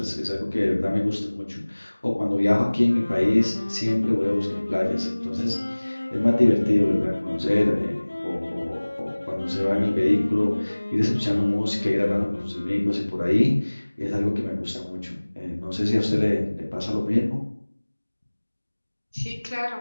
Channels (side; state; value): both; inverted; correlation -1.00